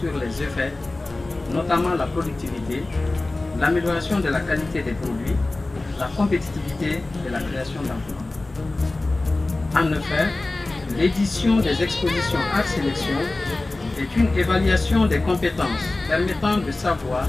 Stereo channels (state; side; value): quieter; right; 3.0 dB